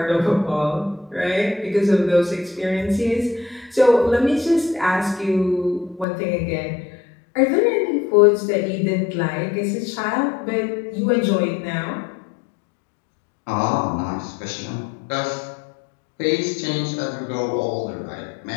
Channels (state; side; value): drops out; right; at 6.1 s